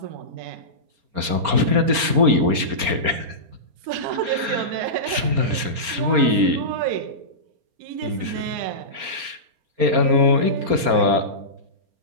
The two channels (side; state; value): left; late; 4.3 ms